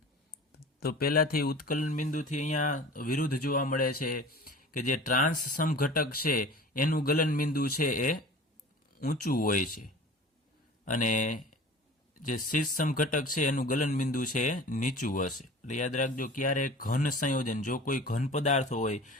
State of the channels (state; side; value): normal; both; correlation 0.41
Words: તો પહેલાથી ઉત્કલન બિંદુથી અહીંયા વિરુદ્ધ જોવા મળે છે કે જે ટ્રાન્સ સમઘટક છે એનું ગલન બિંદુ છે એ ઊંચું હોય છે, અને જે સીસ સમઘટક છે એનું ગલન બિંદુ છે એ નીચું હશે. એટલે યાદ રાખજો, ક્યારે ઘન સંયોજન, જો કોઈ ઘન પદાર્થ હોય